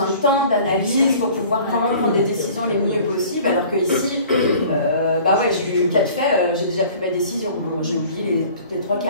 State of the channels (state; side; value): inverted; both; correlation -0.48